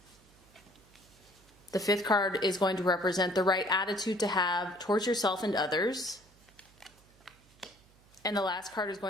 The fifth card is going to represent the right attitude to have towards yourself and others. And the last card is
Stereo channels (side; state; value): right; noise; hum, 29 dB below the sound